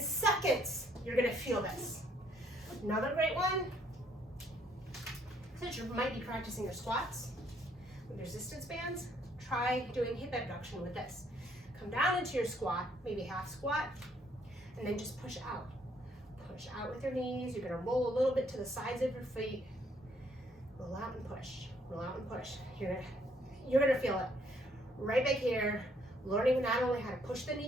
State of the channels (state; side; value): normal; both; correlation 0.67